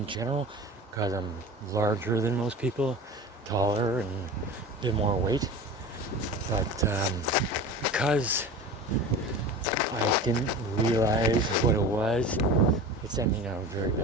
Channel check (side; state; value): both; normal; correlation 0.33